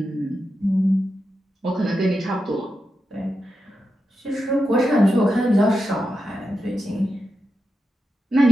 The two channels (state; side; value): normal; both; correlation 0.89